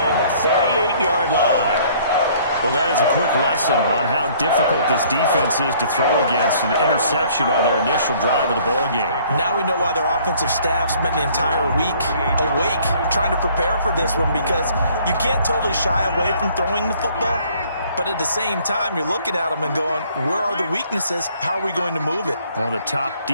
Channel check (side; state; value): both; inverted; correlation -0.58